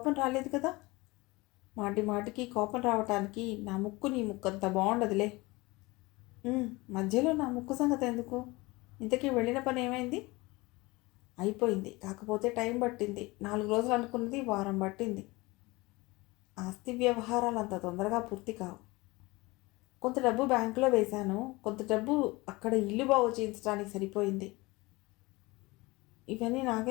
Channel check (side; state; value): right; quieter; 22.8 dB